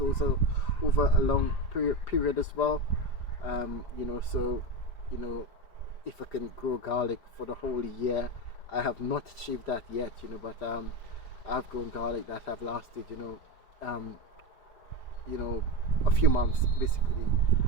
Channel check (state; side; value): late; right; 5.0 ms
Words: over a long period as well. So if I can grow garlic for the whole year, I have not achieved that yet, but I've grown garlic that have lasted, a few months basically.